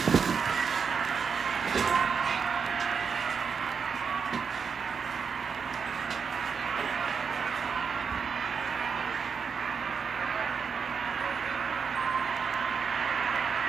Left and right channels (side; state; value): left; quieter; 6.0 dB